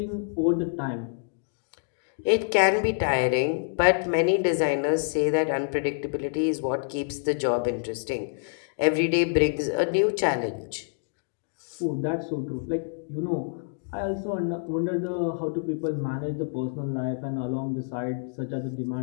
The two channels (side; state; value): right; silent; digital silence